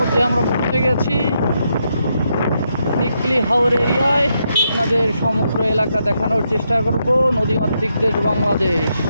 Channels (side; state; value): both; inverted; correlation -0.81